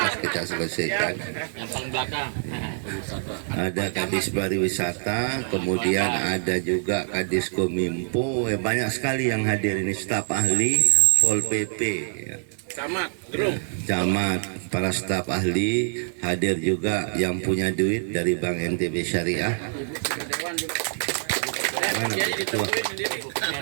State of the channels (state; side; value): silent; left; digital silence